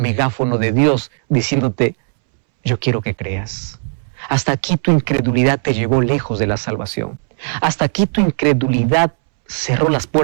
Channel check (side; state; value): left; silent; 68 dB below the other